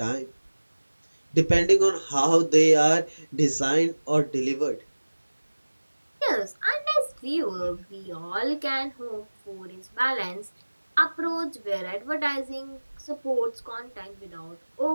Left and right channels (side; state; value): both; inverted; correlation -1.00